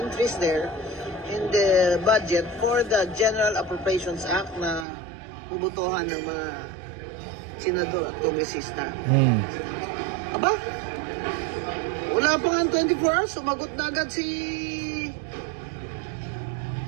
there in the budget for the General Appropriations Act na bubutuhan ng mga senador at kongresista. Aba? Wala pa nga 24 hours, sumagot na agad si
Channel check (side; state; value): left; drops out; at 4.9 s